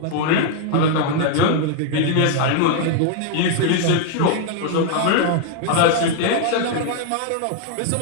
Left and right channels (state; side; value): different; both; correlation 0.00